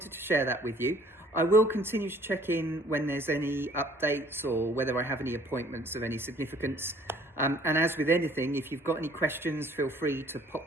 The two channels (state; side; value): normal; both; correlation 0.57